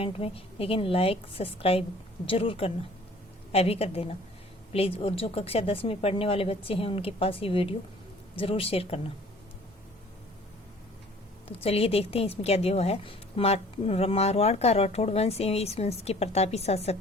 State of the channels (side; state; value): both; normal; correlation 0.51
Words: में। लेकिन लाइक सब्सक्राइब ज़रूर करना, अभी कर देना प्लीज़। और जो कक्षा 10 में पढ़ने वाले बच्चे हैं उनके पास ये वीडियो ज़रूर शेयर करना। तो चलिए देखते हैं इसमें क्या दिया हुआ है। मारवाड़ का राठौड़ वंश एवं इस वंश के प्रतापी शासक।